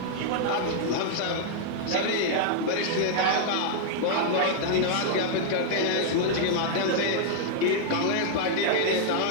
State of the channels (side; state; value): both; different; correlation -0.01